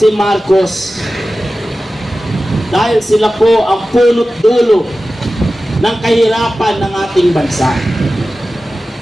Marcos. Dahil sila po ang punot dulo ng kahirapan ng ating bansa.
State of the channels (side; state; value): both; normal; correlation 0.95